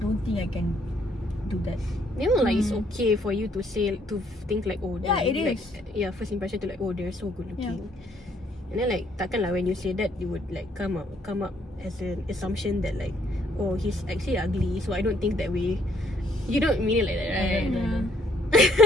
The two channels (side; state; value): both; normal; correlation 0.67